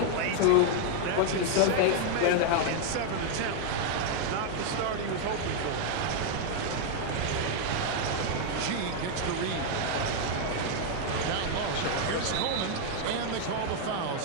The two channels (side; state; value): both; different; correlation 0.00